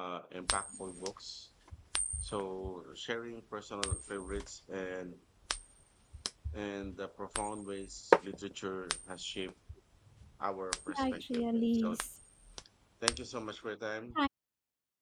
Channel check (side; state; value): both; identical; correlation 1.00